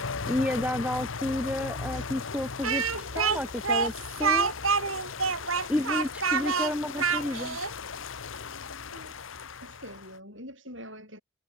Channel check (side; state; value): both; normal; correlation 0.26